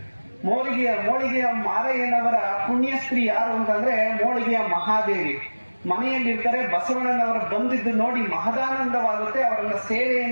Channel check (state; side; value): inverted; both; correlation -1.00